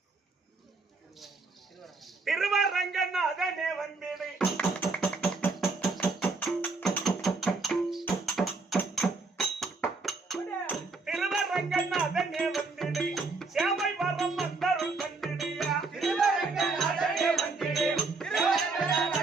திருவரங்கநாதனே வந்திடு திருவரங்கநாதனே வந்திடு சேவை வரம் வந்தருள் வந்திடுயா திருவரங்கநாதனே வந்திடு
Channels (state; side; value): quieter; left; 3.8 dB